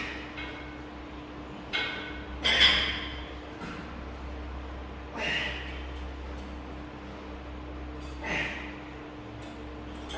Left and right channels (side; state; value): both; identical; correlation 1.00